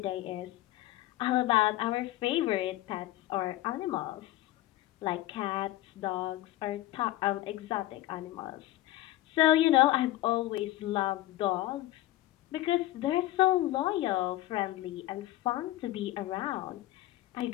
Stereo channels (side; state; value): right; quieter; 15.7 dB